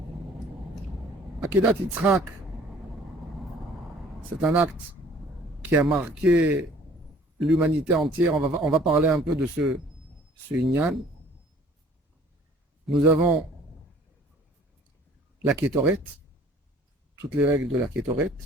Akedat Yitzhak, c'est un acte qui a marqué l'humanité entière. On va parler un peu de ce Inyan. Nous avons la Kétoret, toutes les règles de la Kétoret,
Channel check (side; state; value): both; normal; correlation 0.54